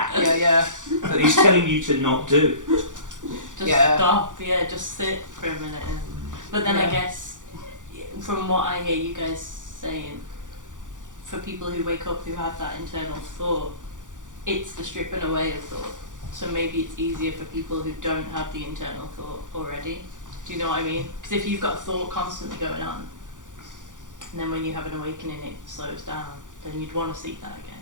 Yeah. That he's telling you to not do. Just Yeah. stop, just sit for a minute. But then I Yeah. guess, from what I hear you guys saying, for people who wake up who have that internal thought, it's the stripping away of thought. So maybe it's easier for people who don't have the internal thought already. Do you know what I mean? Because if you've got thought constantly going on, and then when you have an awakening it slows down, then you'd want to seek that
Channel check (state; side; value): late; left; 0.87 ms